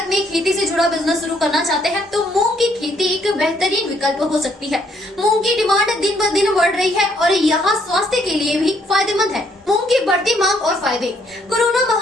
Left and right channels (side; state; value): both; normal; correlation 0.69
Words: में खेती से जुड़ा बिजनेस शुरू करना चाहते हैं तो मूंग की खेती एक बेहतरीन विकल्प हो सकती है। मूंग की डिमांड दिन ब दिन बढ़ रही है और यहाँ स्वास्थ्य के लिए भी फायदेमंद है। मूंग की बढ़ती मांग और फायदे। कोरोना